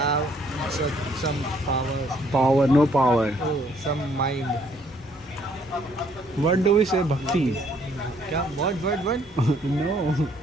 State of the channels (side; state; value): both; normal; correlation 0.65